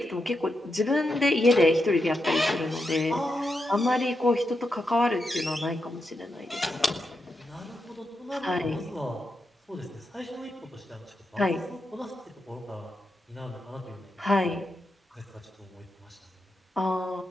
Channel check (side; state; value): both; normal; correlation 0.86